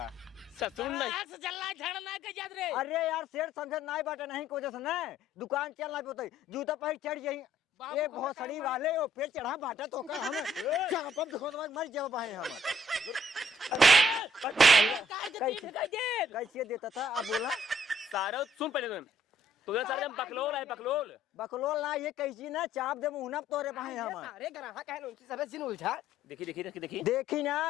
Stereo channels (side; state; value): both; normal; correlation 0.63